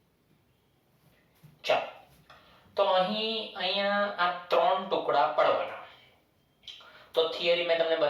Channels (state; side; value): identical; both; correlation 1.00